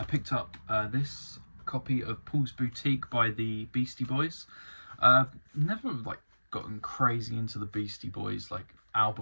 picked up this copy of Paul's Boutique by the Beastie Boys. Never gotten crazy into the Beastie Boys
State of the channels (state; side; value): inverted; both; correlation -1.00